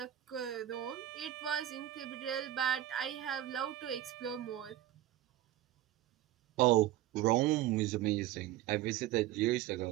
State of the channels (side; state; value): left; quieter; 13.6 dB